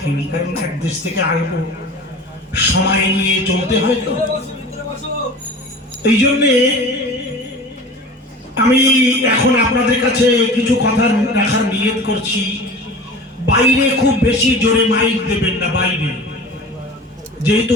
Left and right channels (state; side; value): normal; both; correlation 0.38